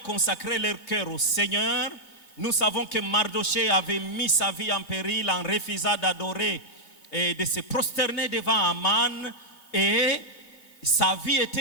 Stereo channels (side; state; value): right; late; 3.0 ms